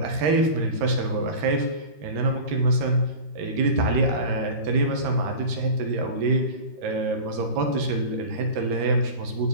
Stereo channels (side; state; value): left; late; 13 ms